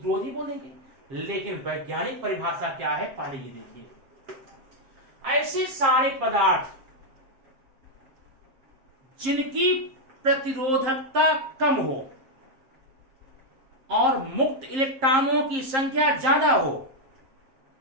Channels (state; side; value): late; left; 7.5 ms